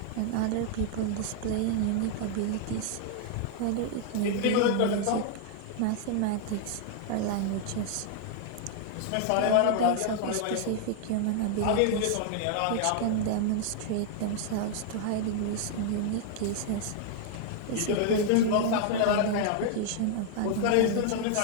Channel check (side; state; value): both; different; correlation 0.00